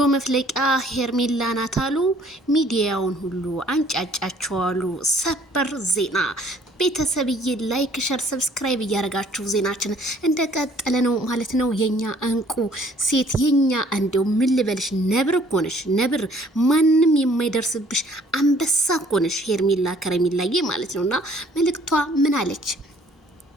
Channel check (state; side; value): normal; both; correlation 0.59